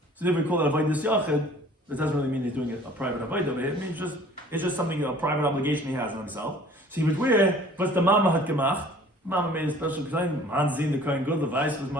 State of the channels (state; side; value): normal; both; correlation 0.51